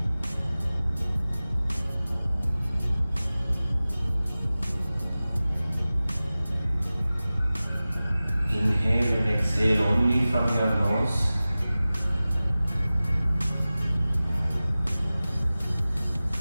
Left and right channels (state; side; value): inverted; both; correlation -0.97